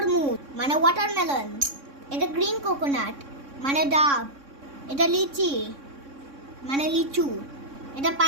মানে ওয়াটারমেলন, এটা গ্রিন কোকোনাট মানে ডাব, এটা লিচি মানে লিচু, এটা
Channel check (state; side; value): late; left; 3.6 ms